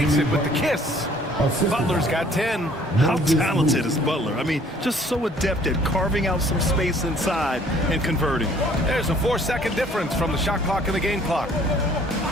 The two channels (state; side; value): normal; both; correlation 0.57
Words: it with the kiss. Butler's got 10. How talented is Butler? I mean, just so adept at carving out some space inside and converting. There's a 4-second difference from the shot clock and the game clock.